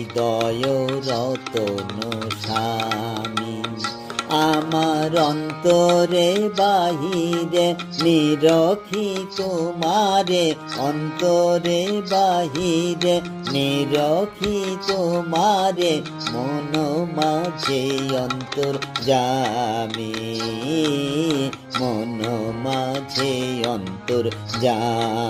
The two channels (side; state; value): both; identical; correlation 1.00